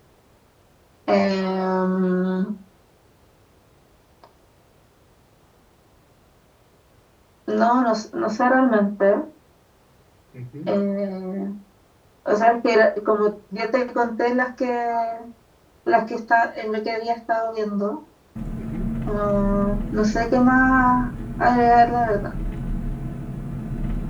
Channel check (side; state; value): both; identical; correlation 1.00